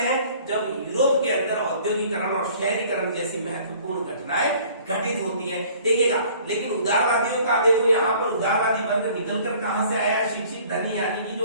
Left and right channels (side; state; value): both; inverted; correlation -0.53